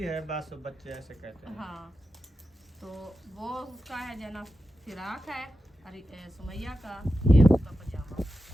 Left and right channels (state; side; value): normal; both; correlation 0.91